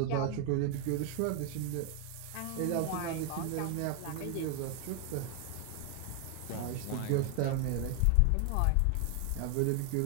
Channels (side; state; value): both; different; correlation 0.01